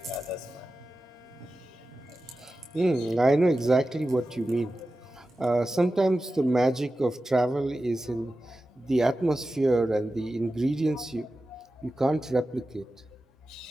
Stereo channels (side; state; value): both; normal; correlation 0.94